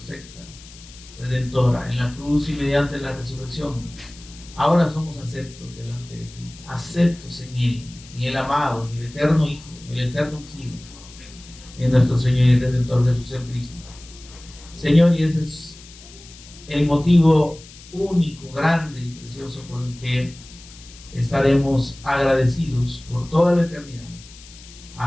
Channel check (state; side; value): noise; left; hiss, 20 dB below the sound